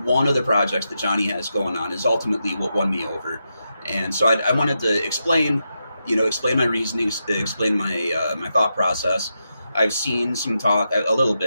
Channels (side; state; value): both; inverted; correlation -0.86